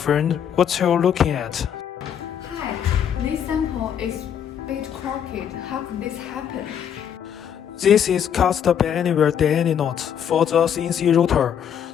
what you looking at? Hi, this sample is a bit crooked. How could this happen? This is cast by anywhere DNA knot for the CNC router.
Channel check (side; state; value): right; quieter; 8.7 dB